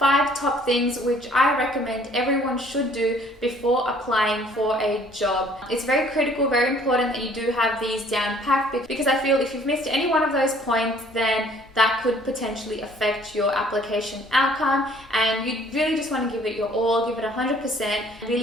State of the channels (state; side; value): normal; both; correlation 0.57